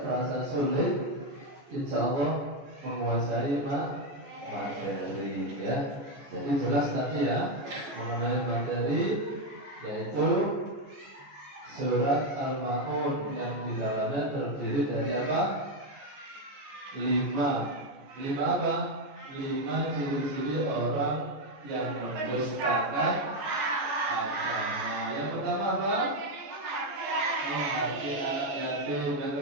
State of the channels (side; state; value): left; late; 14 ms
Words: merasa sulit, insya Allah menguasai materi, ya. Jadi jelas tadi ya mengenai materi, yaitu surat Al-Maun yang di dalamnya terdiri dari apa? 5 apa? 5 ciri-ciri orang yang mendustakan agama. Yang pertama apa? Menghati anak yatim. Yang